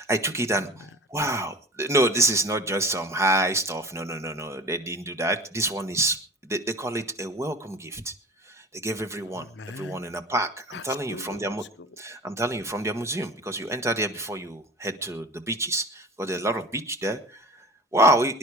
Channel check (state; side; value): normal; both; correlation 0.37